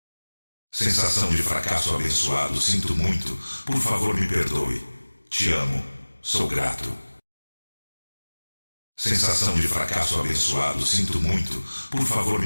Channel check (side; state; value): both; inverted; correlation -1.00